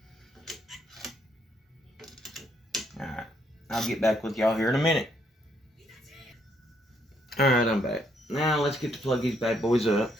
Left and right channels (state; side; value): normal; both; correlation 0.72